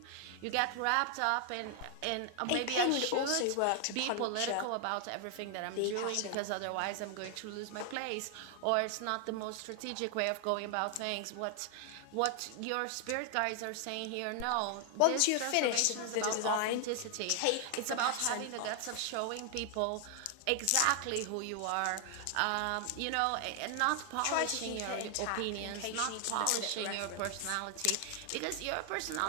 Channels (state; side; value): different; both; correlation 0.00